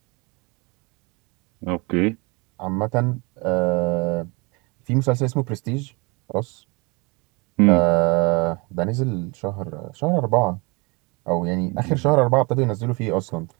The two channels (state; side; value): quieter; left; 28.4 dB